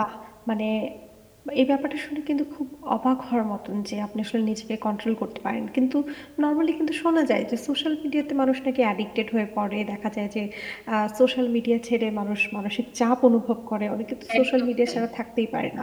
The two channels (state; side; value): identical; both; correlation 1.00